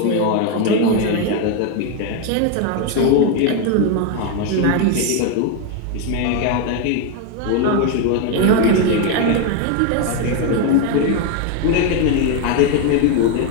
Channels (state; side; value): different; both; correlation 0.01